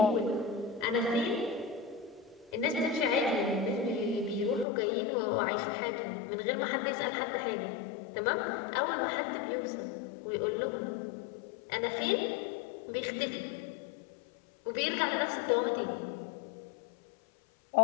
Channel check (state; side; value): drops out; right; at 4.7 s